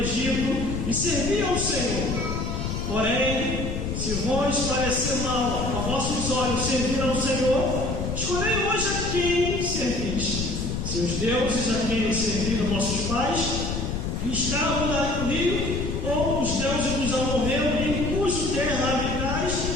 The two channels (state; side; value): noise; left; rumble, 3 dB below the sound